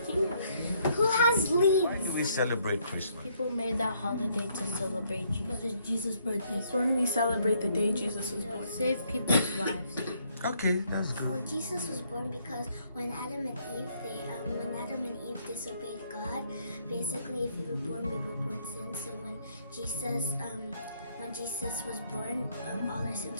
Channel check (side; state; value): both; inverted; correlation -0.70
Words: Who has leads? Why do we celebrate Christmas? People made that holiday to celebrate Jesus. Because it's Jesus' birthday. It's when we celebrate the day Jesus was born. Save people's lives. Okay, that's good. Oh, Jesus was born because when Adam and Eve disobeyed God, basically if we were born sin. So when Jesus was born, all our